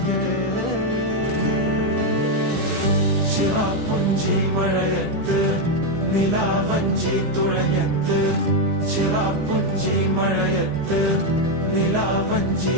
ചിറാപ്പുഞ്ചി മഴയത്ത് നിലാവഞ്ചി തുഴഞ്ഞത്ത് ചിറാപ്പുഞ്ചി മഴയത്ത് നിലാവഞ്ചി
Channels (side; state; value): left; late; 15 ms